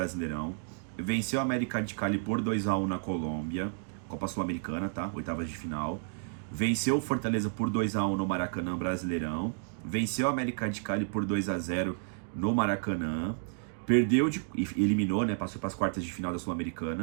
Venceu o América de Cali por 2-1 na Colômbia, Copa Sul-Americana, tá? Oitavas de final. Venceu o Fortaleza por 2-1 no Maracanã Brasileirão. Venceu o América de Cali por 2-0 no Maracanã. Perdeu e eliminou, né? Passou para as quartas de final da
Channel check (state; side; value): silent; left; digital silence